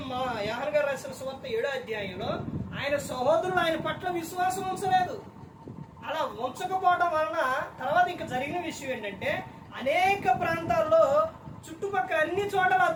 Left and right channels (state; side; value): identical; both; correlation 1.00